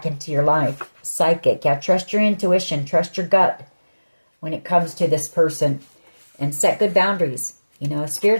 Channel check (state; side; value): inverted; both; correlation -1.00